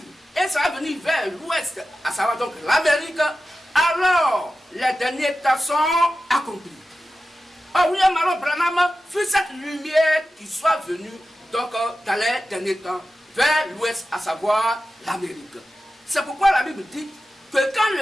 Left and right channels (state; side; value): normal; both; correlation 0.94